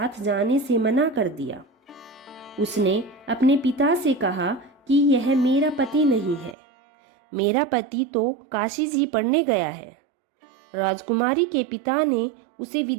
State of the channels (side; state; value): left; drops out; at 6.6 s